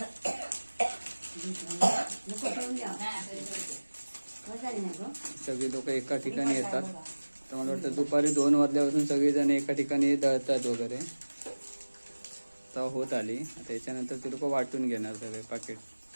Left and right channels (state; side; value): inverted; both; correlation -1.00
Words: सगळी लोक एका ठिकाणी येतात. तर मला वाटतं दुपारी 2 वाजल्यापासून सगळेजण एका ठिकाणी दळतात वगैरे. तर होत आली. आता याच्यानंतर ते लोक वाटून घेणार सगळे पाकिट.